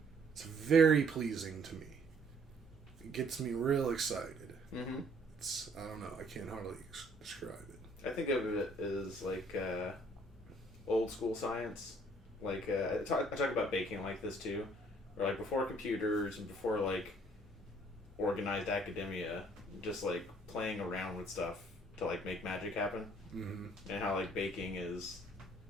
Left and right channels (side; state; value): both; normal; correlation 0.61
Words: it's very pleasing to me. It gets me real excited. Mm-hmm. I don't know. I can't hardly describe it. I think of it as like old school science. Like I talk about baking like this too, or like before computers and before like organized academia, just like playing around with stuff to like make magic happen. Mm-hmm. And how like baking is